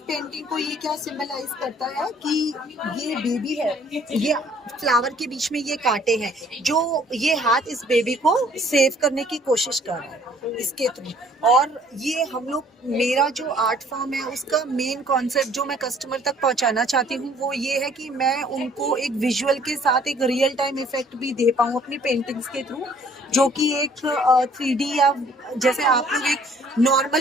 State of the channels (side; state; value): both; normal; correlation 0.58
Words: पेंटिंग को ये क्या सिंबलाइज करता है कि ये बेबी है, ये फ्लावर के बीच में ये कांटे हैं, जो ये हाथ इस बेबी को सेव करने की कोशिश कर रहा है इसके थ्रू। और ये हम लोग, मेरा जो आर्ट फॉर्म है उसका मेन कॉन्सेप्ट जो मैं कस्टमर तक पहुंचाना चाहती हूँ वो ये है कि मैं उनको एक विजुअल के साथ एक रियल टाइम इफेक्ट भी दे पाऊँ अपनी पेंटिंग्स के थ्रू, जो कि एक 3D या जैसे आप लोग एक